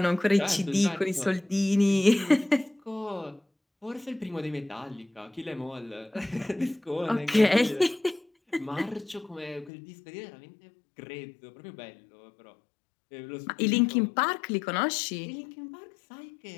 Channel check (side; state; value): right; drops out; at 9.7 s